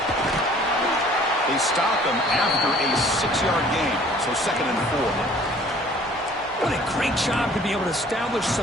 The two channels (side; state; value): both; normal; correlation 0.53